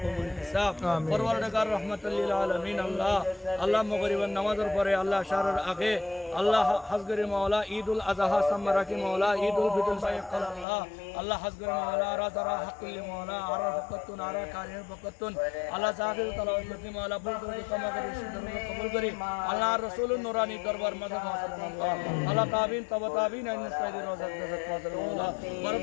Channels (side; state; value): right; drops out; at 10.7 s